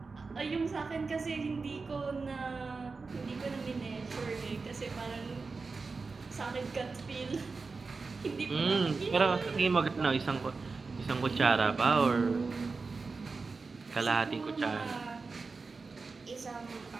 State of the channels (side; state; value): left; quieter; 4.3 dB